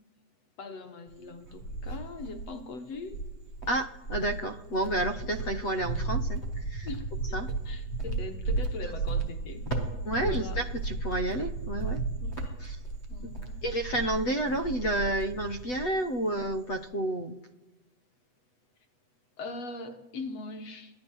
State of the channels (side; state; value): right; late; 8.1 ms